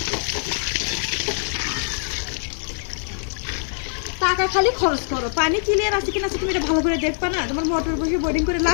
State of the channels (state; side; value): silent; right; digital silence